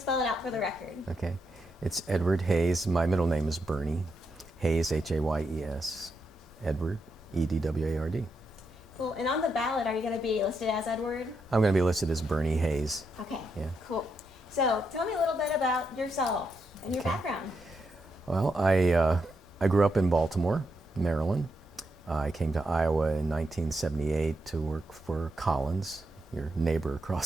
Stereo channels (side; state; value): both; normal; correlation 0.82